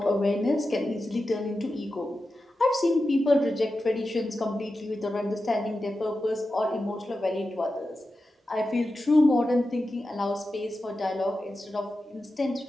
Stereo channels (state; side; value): normal; both; correlation 0.92